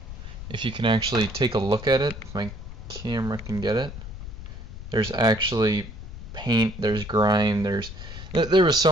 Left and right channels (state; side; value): noise; left; rumble, 11 dB below the sound